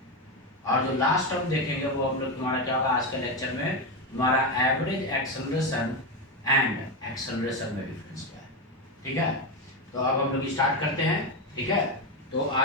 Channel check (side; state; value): both; normal; correlation 0.12